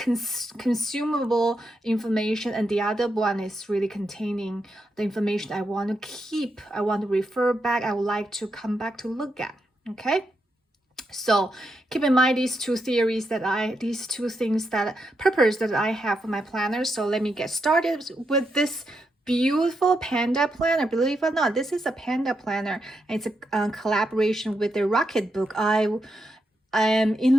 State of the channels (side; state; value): both; normal; correlation 0.83